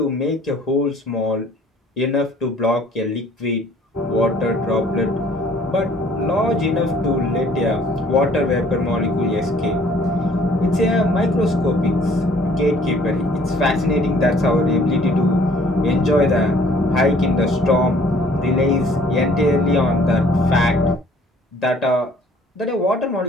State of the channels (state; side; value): normal; both; correlation 0.57